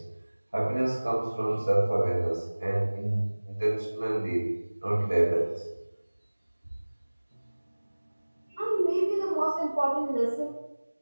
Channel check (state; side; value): inverted; both; correlation -1.00